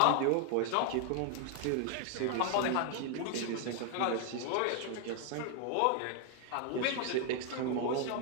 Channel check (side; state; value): both; different; correlation 0.00